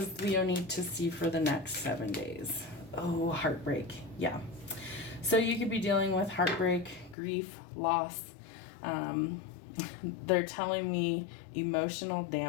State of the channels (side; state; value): right; drops out; at 7.2 s